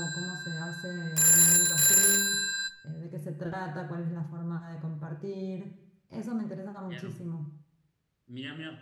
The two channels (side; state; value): both; identical; correlation 1.00